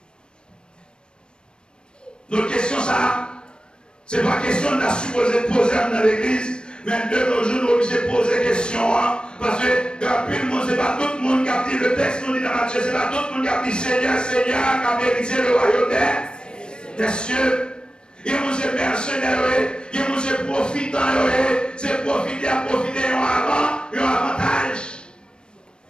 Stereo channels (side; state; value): right; late; 0.052 ms